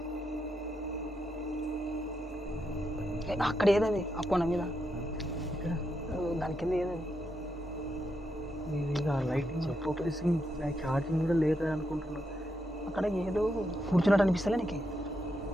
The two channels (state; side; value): normal; both; correlation 0.82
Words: అక్కడ ఏదది ఆ కొన మీద దాని కింద ఏదది? లైటింగ్ ఫోకసింగ్ ఛార్జింగ్ కూడా లేదా అనుకుంటున్నా. అక్కడ ఏదో కూర్చున్నట్టు అనిపిస్తలే నీకు?